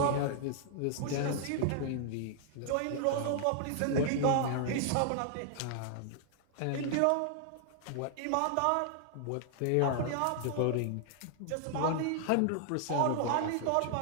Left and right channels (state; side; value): different; both; correlation -0.01